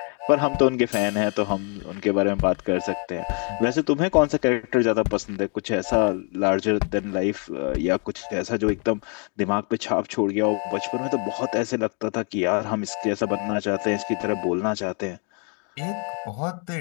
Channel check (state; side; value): quieter; right; 38.6 dB